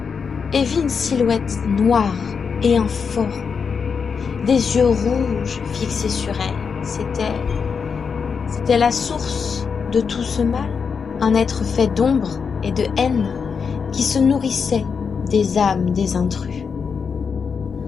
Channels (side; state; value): right; quieter; 5.9 dB